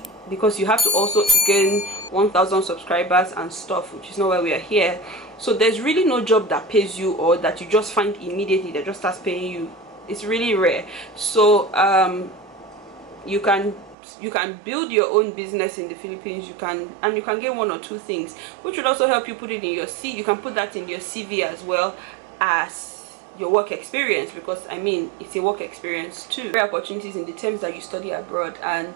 because you have to also gain 1,000 subscribers and stuff, which is not why we are here. So there's really no job that pays you, or that you just find immediately that just starts paying you. It's really rare. So you can build your own business in the Philippines. You can get 1 or 2 things, which would also help you put it in your CV. You can put that in your CV as well as your work experience, because I mean it's a work experience too. Career opportunities in the terms that you study abroad.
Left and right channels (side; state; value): left; drops out; at 14.0 s